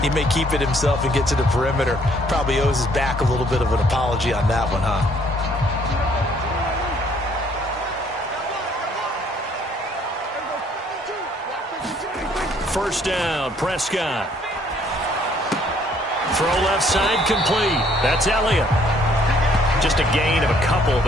he may keep it himself and get to the perimeter. Probably owes his back a little bit of an apology on that one, huh? First down, Prescott. Throw left side complete. That's Elliott. Just a gain of a couple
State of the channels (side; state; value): both; normal; correlation 0.63